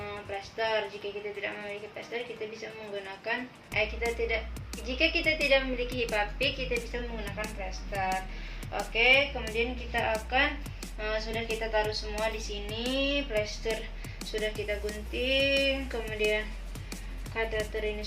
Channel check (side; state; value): both; identical; correlation 1.00